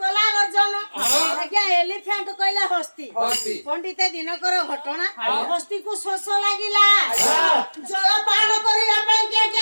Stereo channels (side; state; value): both; inverted; correlation -1.00